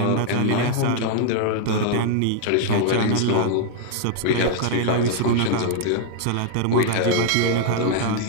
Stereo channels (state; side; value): different; both; correlation -0.01